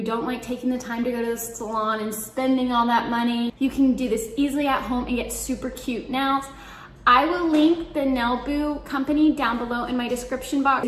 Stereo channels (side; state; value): both; identical; correlation 1.00